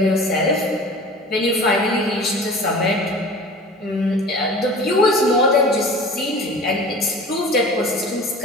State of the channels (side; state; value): both; normal; correlation 0.40